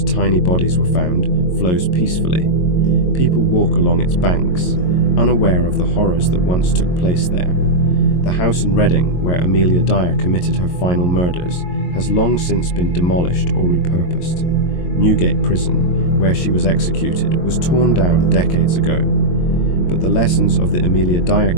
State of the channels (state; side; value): late; right; 22 ms